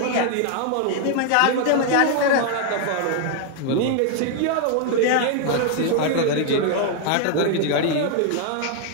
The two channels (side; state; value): both; different; correlation 0.00